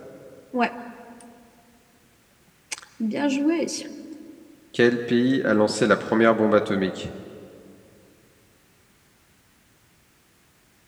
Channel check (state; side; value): identical; both; correlation 1.00